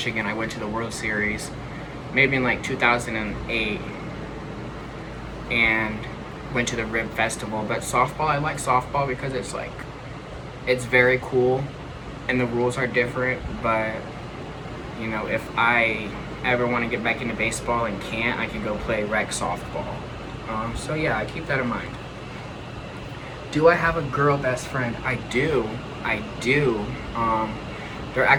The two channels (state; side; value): identical; both; correlation 1.00